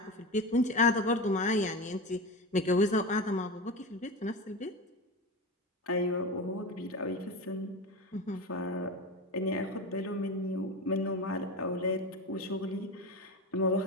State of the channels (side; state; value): both; normal; correlation 0.24